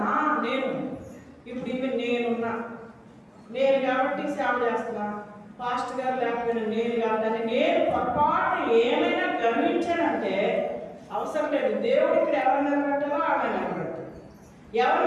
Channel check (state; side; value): identical; both; correlation 1.00